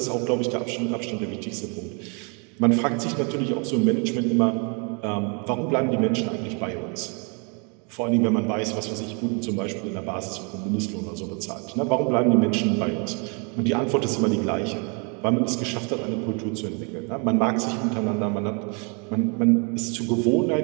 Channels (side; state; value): left; quieter; 35.6 dB